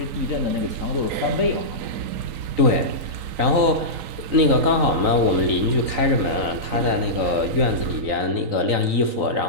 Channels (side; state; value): left; late; 3.9 ms